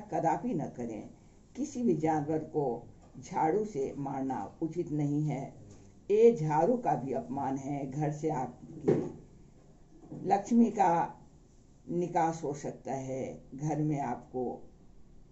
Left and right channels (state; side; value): identical; both; correlation 1.00